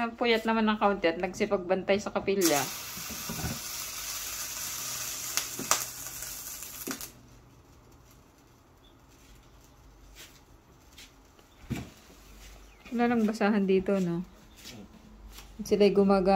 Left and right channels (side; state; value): both; identical; correlation 1.00